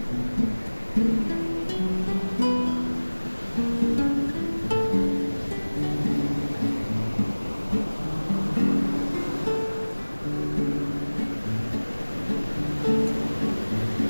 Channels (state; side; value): inverted; both; correlation -1.00